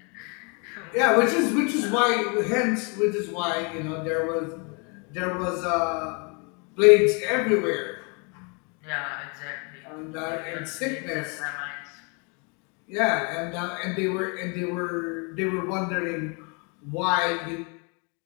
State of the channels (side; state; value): right; quieter; 33.8 dB